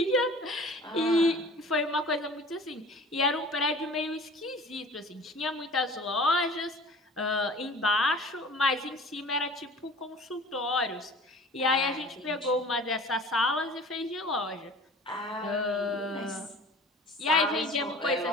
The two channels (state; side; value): normal; both; correlation 0.44